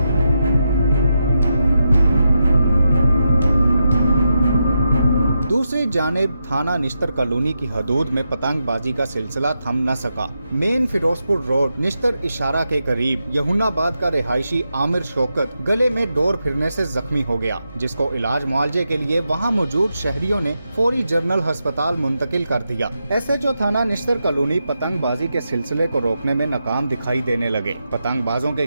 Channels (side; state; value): both; inverted; correlation -0.86